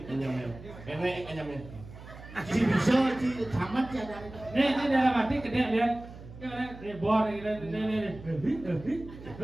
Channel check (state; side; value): noise; right; hum, 16 dB below the sound